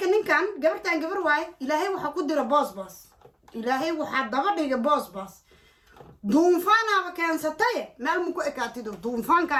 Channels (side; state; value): both; identical; correlation 1.00